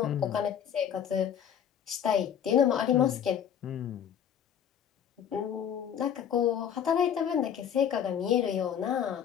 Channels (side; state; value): right; quieter; 8.8 dB